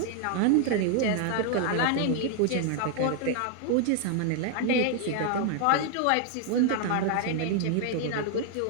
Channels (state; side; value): different; both; correlation 0.00